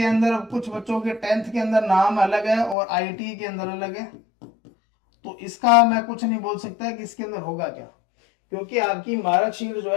अंदर, कुछ बच्चों के 10th के अंदर नाम अलग है और आईटी के अंदर अलग है, तो इसका मैं कुछ नहीं बोल सकता कि इसके अंदर होगा क्या, क्योंकि आपकी मार्कशीट जो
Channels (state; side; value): drops out; right; at 2.8 s